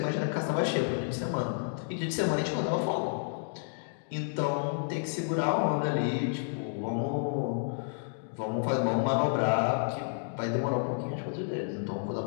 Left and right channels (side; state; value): right; silent; digital silence